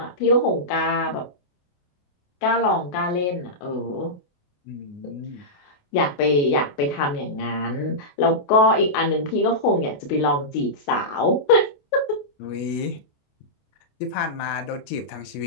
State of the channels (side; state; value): right; late; 28 ms